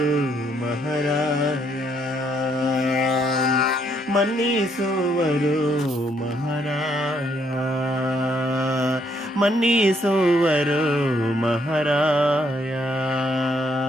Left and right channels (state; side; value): normal; both; correlation 0.71